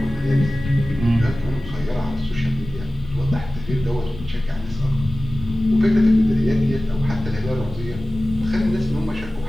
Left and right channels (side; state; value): both; normal; correlation 0.96